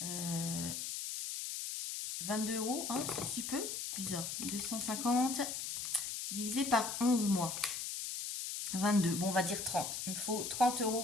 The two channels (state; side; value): noise; left; hiss, 4 dB below the sound